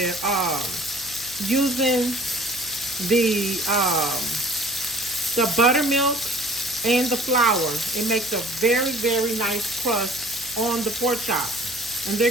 using the buttermilk and the flour. It makes a very, very nice crust on the pork chops, and they're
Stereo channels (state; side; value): noise; right; hum, 21 dB below the sound